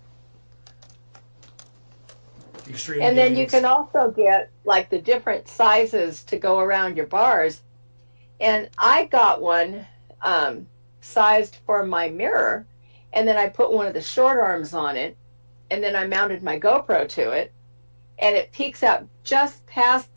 Extreme And then you games. can also get like the different sizes to go around your bars. And I got one sized for my mirror, and then I put one of the short arms on it, and then I mounted my GoPro to it, and it peeks out just past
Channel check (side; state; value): both; inverted; correlation -1.00